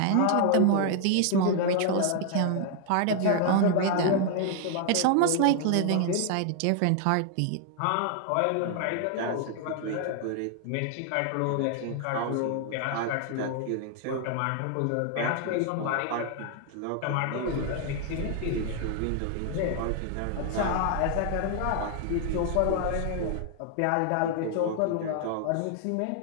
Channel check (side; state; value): both; different; correlation 0.00